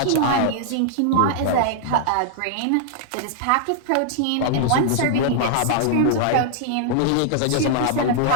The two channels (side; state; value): both; different; correlation -0.01